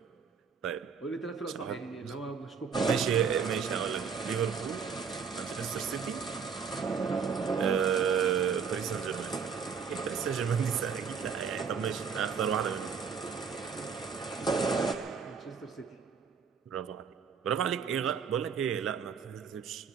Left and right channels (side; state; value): left; quieter; 6.3 dB